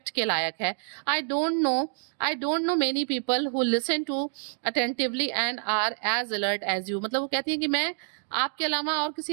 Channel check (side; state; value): left; silent; digital silence